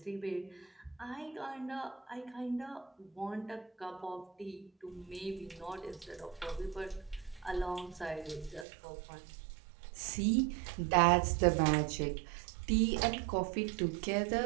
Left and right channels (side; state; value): left; drops out; at 8.7 s